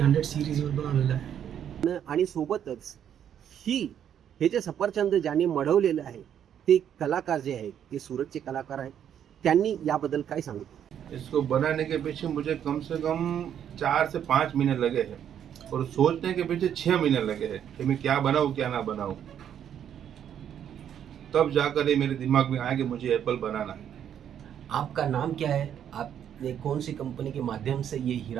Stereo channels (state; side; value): quieter; left; 9.4 dB